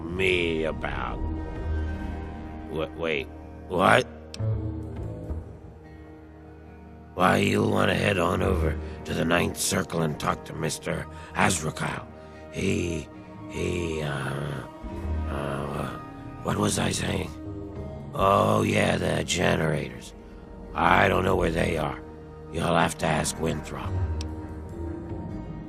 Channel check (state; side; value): identical; both; correlation 1.00